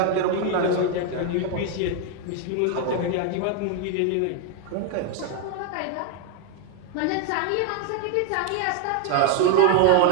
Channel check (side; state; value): both; different; correlation 0.01